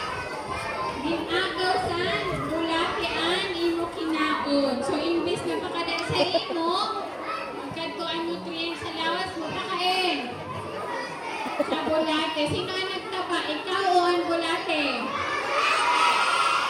Ginagaw sa bulate ang imo kinaon. So imbis na pakadaan sa imo, magkadto ang nutrients sa lawas mo pakain. Sa bulate. Sino ang nagtaba? Ikaw o ang bulate?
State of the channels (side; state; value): both; identical; correlation 1.00